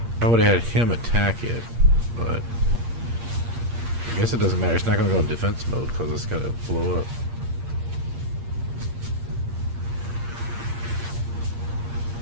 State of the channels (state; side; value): late; left; 8.6 ms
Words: I would've had him attack it, but... I guess it doesn't matter. It's not gonna go in defense mode, because it's gonna blow up.